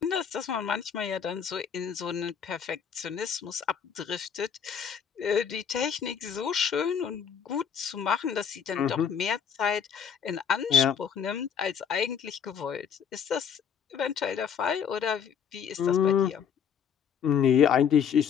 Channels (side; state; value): right; quieter; 7.5 dB